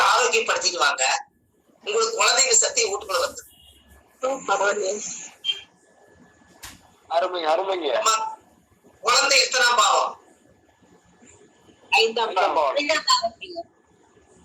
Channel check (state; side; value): identical; both; correlation 1.00